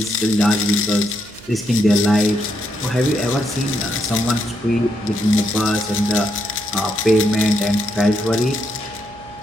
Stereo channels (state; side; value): noise; right; hum, 22 dB below the sound